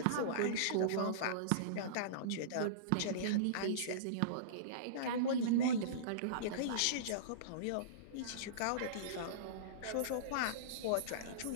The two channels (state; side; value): different; both; correlation -0.04